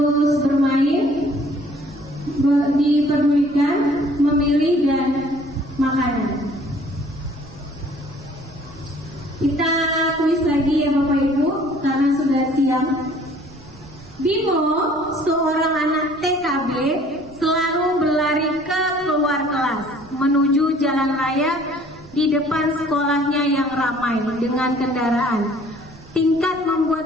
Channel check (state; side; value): noise; right; rumble, 22 dB below the sound